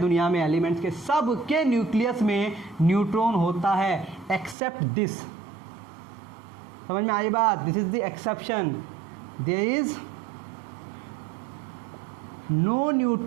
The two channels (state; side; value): drops out; left; at 4.5 s